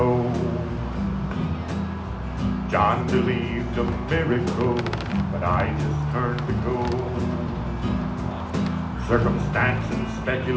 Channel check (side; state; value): both; identical; correlation 1.00